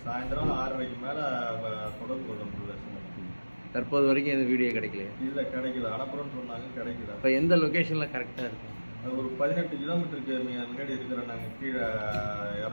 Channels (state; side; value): inverted; both; correlation -1.00